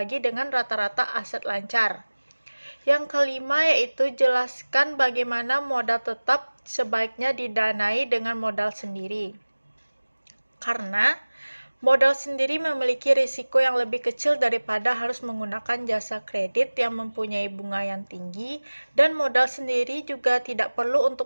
dengan rata-rata aset lancar. Yang kelima yaitu jelaskan bagaimana modal tetap sebaiknya didanai dengan modal sendiri. Karena modal sendiri memiliki risiko yang lebih kecil daripada harus menggunakan jasa kredit yang mempunyai bunga yang tinggi, dan modal sendiri juga tidak perlu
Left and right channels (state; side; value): inverted; both; correlation -1.00